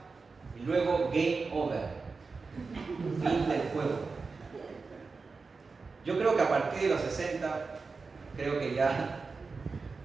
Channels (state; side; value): quieter; left; 4.4 dB